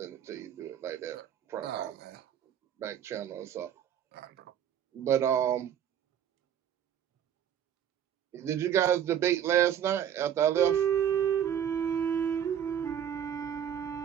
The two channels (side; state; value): left; quieter; 9.4 dB